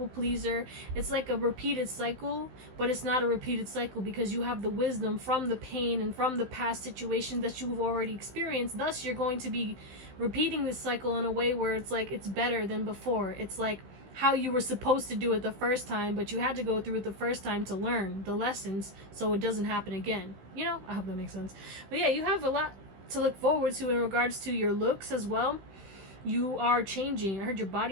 pleaser. It's like a repeated cycle, but it's not a repeated cycle because you have the wisdom from the pain and from the past situation that you've already experienced. Thus you're going to be repeating this cycle in a way where it's like it's better than before. It's like how you were supposed to do it the first time, but you had to go through it the first time to learn the lessons so it doesn't happen again. You know, I hope that makes sense. But yeah, you have a lot to look forward to in regards to your looks as well. You are changing. I heard your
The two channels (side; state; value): left; late; 16 ms